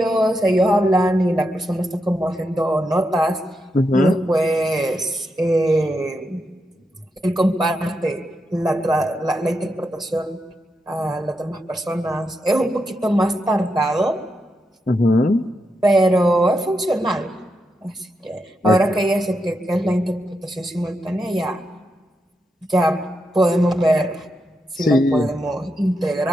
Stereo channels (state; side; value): normal; both; correlation 0.85